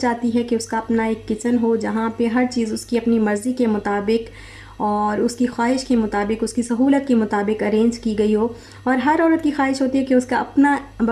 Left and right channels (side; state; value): both; identical; correlation 1.00